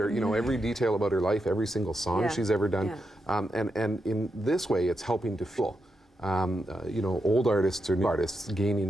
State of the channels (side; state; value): both; normal; correlation 0.85